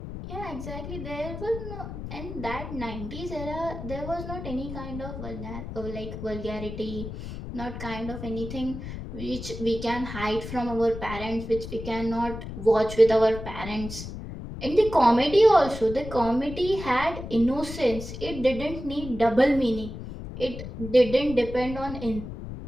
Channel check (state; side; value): noise; left; rumble, 9 dB below the sound